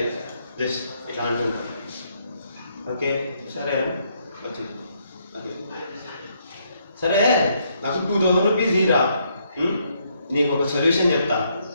జస్ట్ ఇట్లా అంటుంది. ఓకే సరే వచ్చింది. ఓకే సరే, నాకు 2000 రూపీస్ ఇరా. నీకు ఒక సొల్యూషన్ చెప్తా.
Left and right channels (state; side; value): inverted; both; correlation -0.73